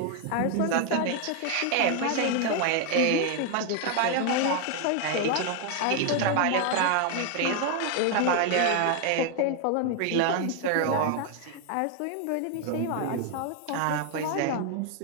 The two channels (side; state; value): both; different; correlation 0.01